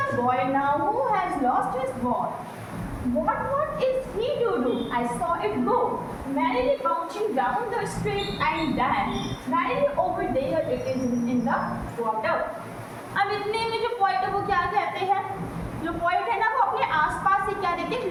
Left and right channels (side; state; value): both; identical; correlation 1.00